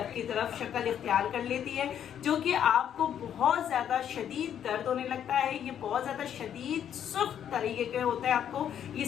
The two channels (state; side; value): quieter; right; 9.4 dB